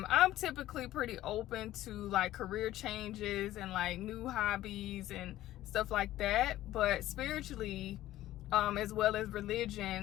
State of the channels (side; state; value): right; quieter; 14.6 dB